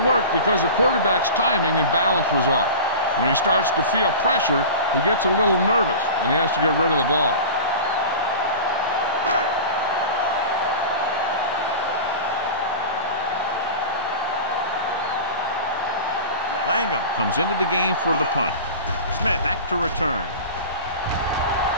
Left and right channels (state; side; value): inverted; both; correlation -0.33